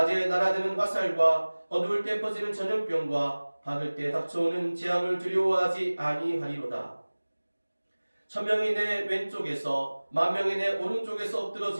날아드는 화살과 어두울 때 퍼지는 전염병과 박을 때 닥쳐오는 재앙을 두려워하지 아니하리로다. 천명이 내 왼쪽에서 만명이 내 오른쪽에서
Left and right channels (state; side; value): inverted; both; correlation -1.00